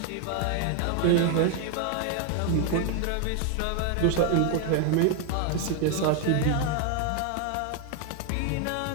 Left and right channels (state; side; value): different; both; correlation 0.01